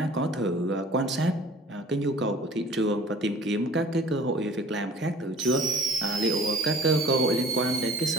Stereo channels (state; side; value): normal; both; correlation 0.48